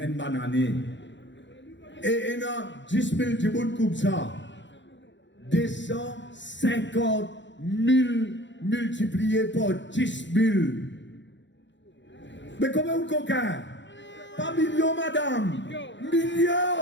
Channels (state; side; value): late; right; 0.53 ms